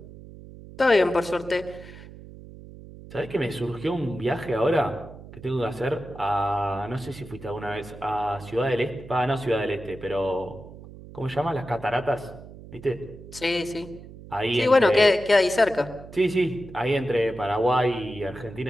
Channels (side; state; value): right; noise; hum, 16 dB below the sound